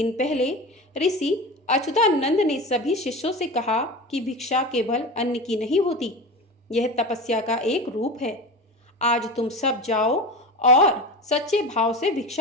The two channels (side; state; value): both; normal; correlation 0.28